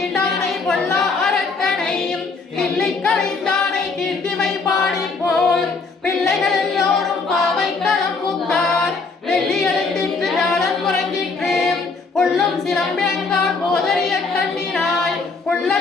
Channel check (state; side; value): quieter; right; 4.2 dB